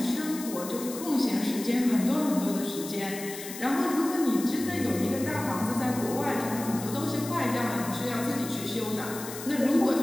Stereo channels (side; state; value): left; noise; hiss, 11 dB below the sound